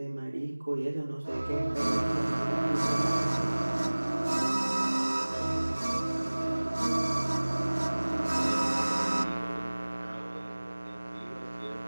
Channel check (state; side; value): inverted; both; correlation -1.00